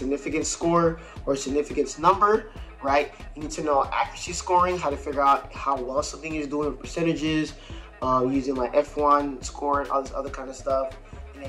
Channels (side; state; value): both; identical; correlation 1.00